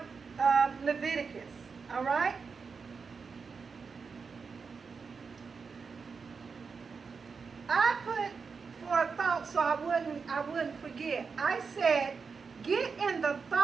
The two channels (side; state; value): left; quieter; 5.2 dB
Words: Leviticus. All right? I put for a thought so I wouldn't forget. I said, get in the